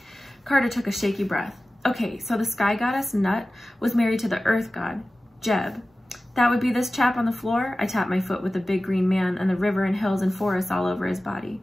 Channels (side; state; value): both; normal; correlation 0.96